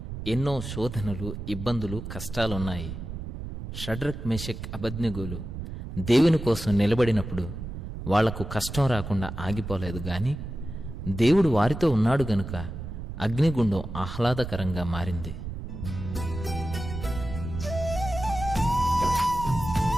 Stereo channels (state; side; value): noise; right; rumble, 8 dB below the sound